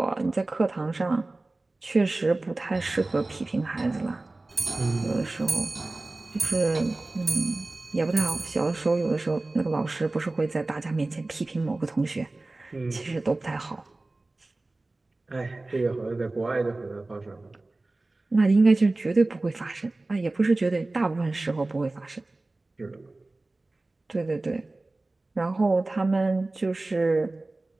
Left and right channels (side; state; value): left; quieter; 3.0 dB